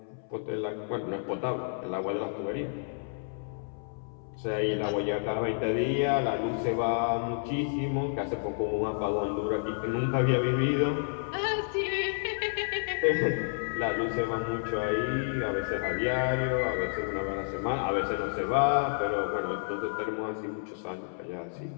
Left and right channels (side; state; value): right; silent; 58 dB below the other